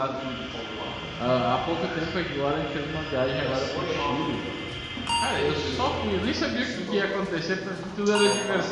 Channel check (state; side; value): identical; both; correlation 1.00